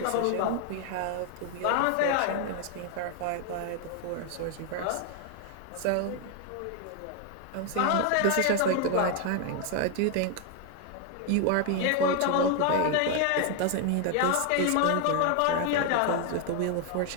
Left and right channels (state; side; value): different; both; correlation 0.00